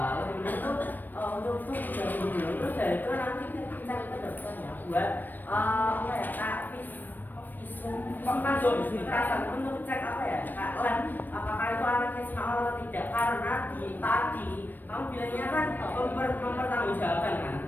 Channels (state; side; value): late; right; 0.090 ms